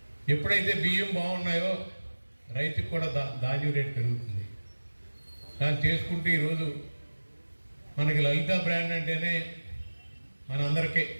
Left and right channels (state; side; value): inverted; both; correlation -1.00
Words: ఎప్పుడైతే బియ్యం బాగున్నాయో రైతుకి కూడా ధాన్యం రేటు పెరుగుతుంది. దాన్ని చేసుకుంటూ ఈరోజు మనకి లలిత బ్రాండ్ అంటేనే మనందరికీ